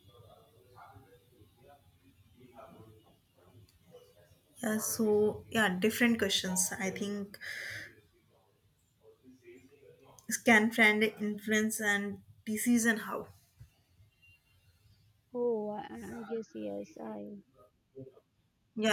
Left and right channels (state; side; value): identical; both; correlation 1.00